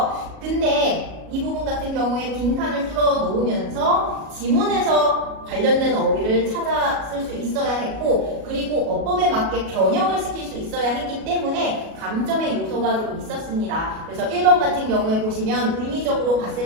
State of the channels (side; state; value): left; late; 37 ms